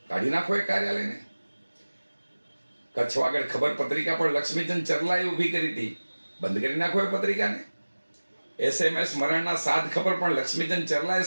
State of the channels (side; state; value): both; inverted; correlation -1.00